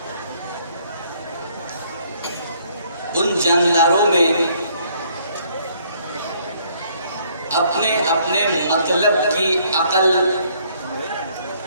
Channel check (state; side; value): inverted; both; correlation -0.65